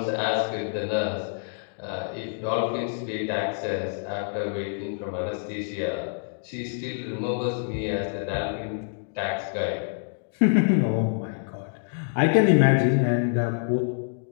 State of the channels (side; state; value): right; silent; digital silence